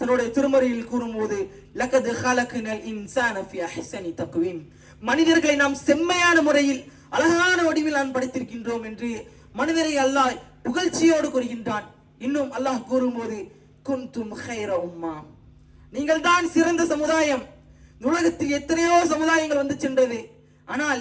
திருமறையில் கூறும்போது லகத் ஹலக்னல் இன்சான ஃபீ அஹ்ஸனி தக்வீம், மனிதர்களை நாம் செம்மையான முறையில் அழகான வடிவில் நான் படைத்திருக்கின்றோம் என்று மனிதரை அல்லாஹ் புகழ்ச்சியோடு கூறுகின்றான். இன்னும் அல்லாஹ் கூறும்போது குன்தும் கைர உம்மா, நீங்கள் தான் சிறந்த சமுதாயம். உலகத்தில் எத்தனையோ சமுதாயங்கள் வந்து சென்றது.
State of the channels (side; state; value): both; identical; correlation 1.00